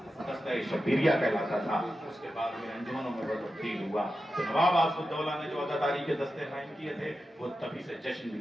دستہ شبیریہ کہلاتا تھا، اس کے بعد میں انجمنوں میں تبدیل ہوا، تو نواب آصف الدولہ نے جو عزاداری کے دستے قائم کیے تھے وہ تبھی سے جشن بھی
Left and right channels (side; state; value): both; normal; correlation 0.91